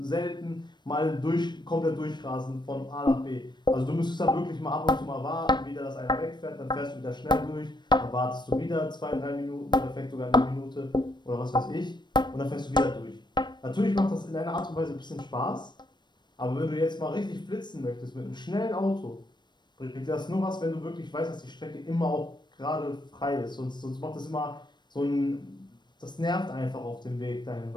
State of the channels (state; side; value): late; right; 0.22 ms